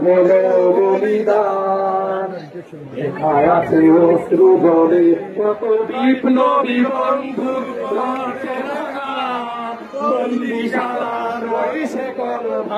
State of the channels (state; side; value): identical; both; correlation 1.00